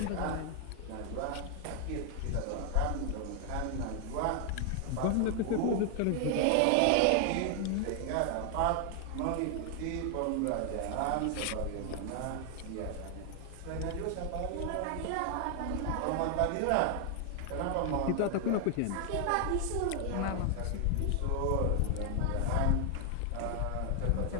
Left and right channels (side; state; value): both; different; correlation 0.00